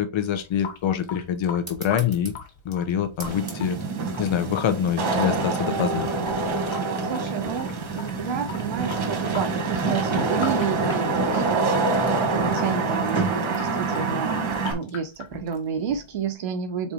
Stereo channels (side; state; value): right; late; 1.3 ms